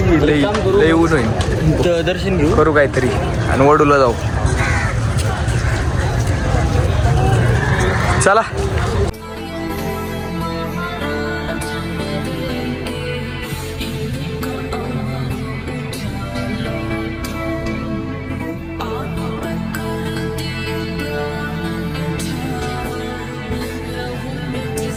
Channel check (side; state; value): both; identical; correlation 1.00